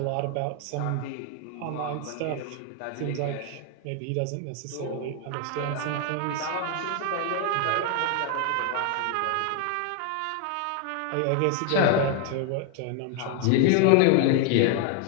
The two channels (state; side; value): different; both; correlation 0.01